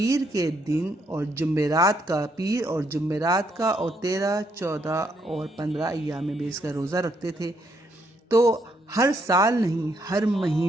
کے دن اور جمعرات کا اور 13، 14 اور 15 ایام بیس کا روزہ رکھتے تھے۔ تو ہر سال نہیں، ہر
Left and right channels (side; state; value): both; normal; correlation 0.74